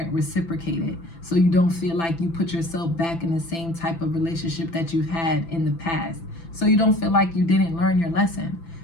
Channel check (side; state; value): right; late; 6.0 ms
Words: reciprocated, so you don't feel like you put yourself back in the same type of relationship that you've had in the past, so you don't feel like you didn't learn your lesson.